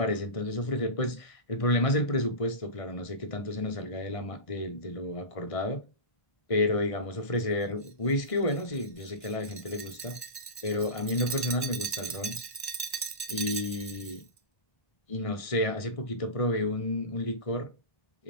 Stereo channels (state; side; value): late; right; 1.1 ms